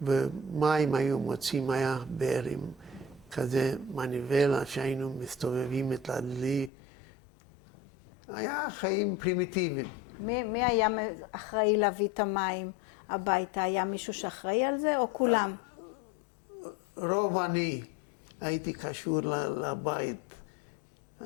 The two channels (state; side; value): drops out; right; at 6.7 s